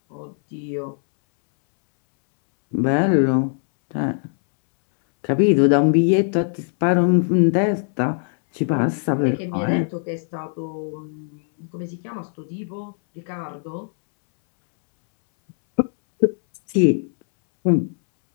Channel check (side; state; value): right; silent; 65 dB below the other